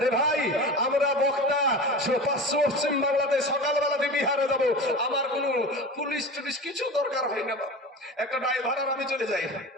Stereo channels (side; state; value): both; normal; correlation 0.31